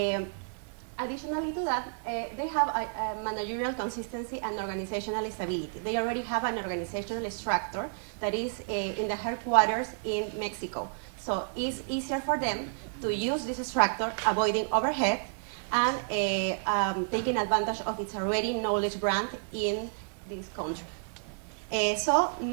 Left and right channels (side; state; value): left; silent; 57 dB below the other